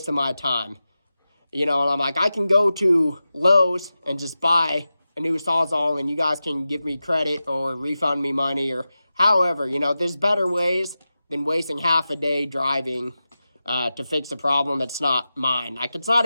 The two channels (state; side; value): inverted; both; correlation -0.94